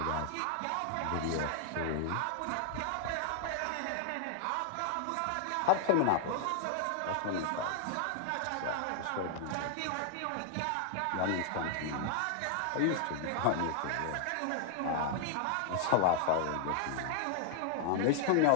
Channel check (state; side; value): different; both; correlation -0.01